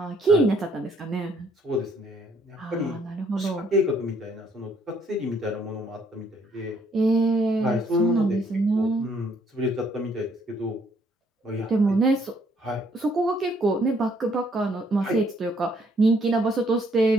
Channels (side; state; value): both; normal; correlation 0.67